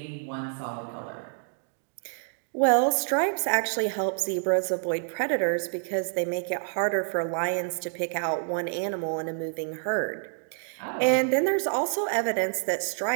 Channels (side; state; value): left; silent; 59 dB below the other